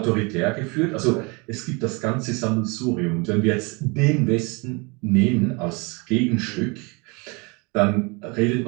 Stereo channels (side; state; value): left; quieter; 29.3 dB